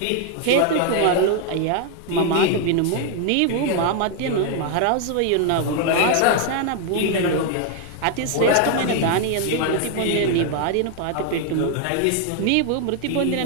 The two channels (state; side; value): different; both; correlation 0.00